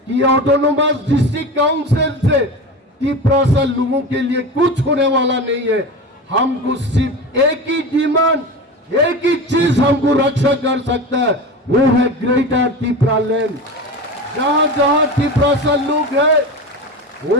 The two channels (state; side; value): normal; both; correlation 0.27